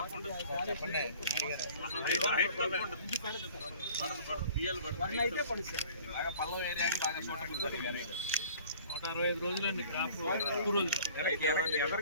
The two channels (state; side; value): inverted; both; correlation -0.49